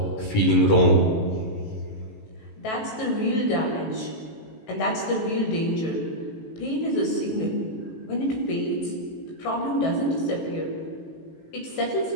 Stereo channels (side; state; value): right; late; 18 ms